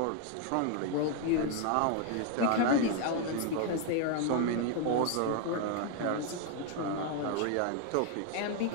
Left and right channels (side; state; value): both; different; correlation 0.00